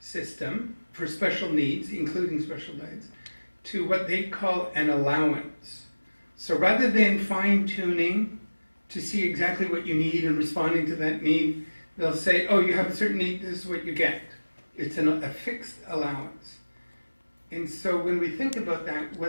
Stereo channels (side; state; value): both; inverted; correlation -1.00